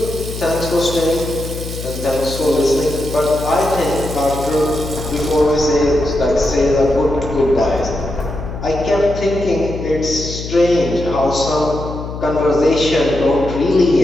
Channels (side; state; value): left; noise; hum, 8 dB below the sound